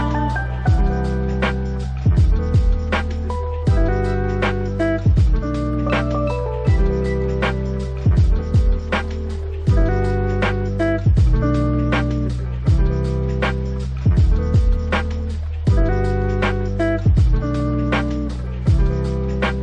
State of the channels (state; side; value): identical; both; correlation 1.00